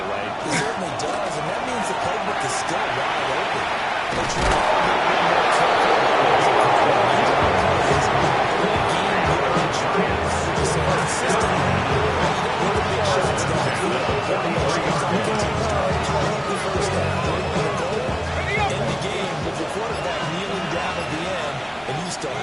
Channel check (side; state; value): both; identical; correlation 1.00